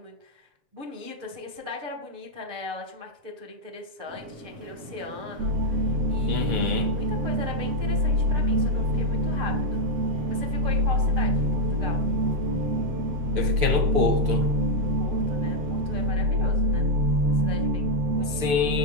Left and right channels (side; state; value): left; late; 6.9 ms